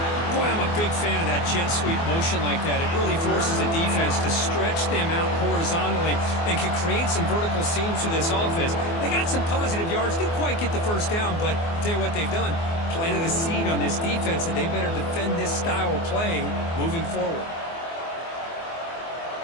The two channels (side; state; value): right; late; 24 ms